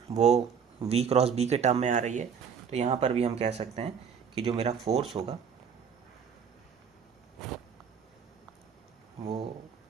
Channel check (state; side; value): quieter; left; 6.9 dB